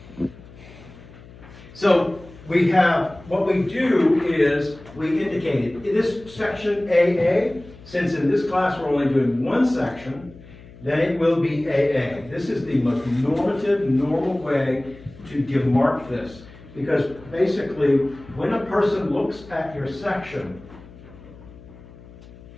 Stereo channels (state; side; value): noise; left; hum, 20 dB below the sound